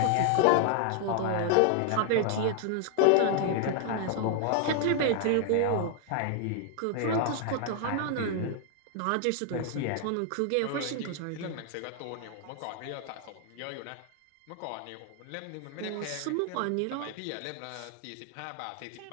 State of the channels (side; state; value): both; different; correlation 0.00